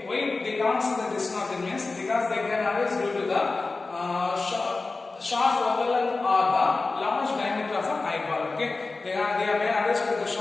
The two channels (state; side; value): quieter; right; 3.7 dB